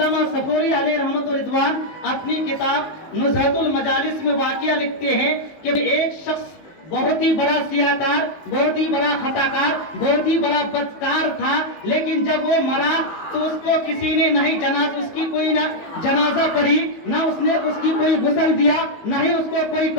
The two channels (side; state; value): right; late; 19 ms